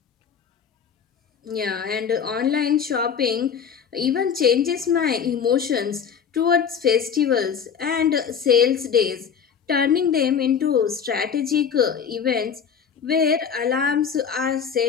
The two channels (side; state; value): right; quieter; 7.3 dB